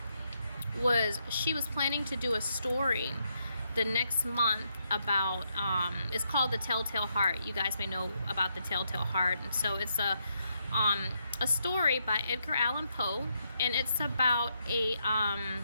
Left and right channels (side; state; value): both; inverted; correlation -0.79